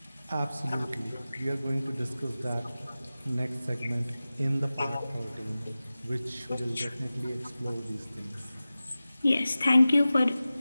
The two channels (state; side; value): inverted; both; correlation -0.96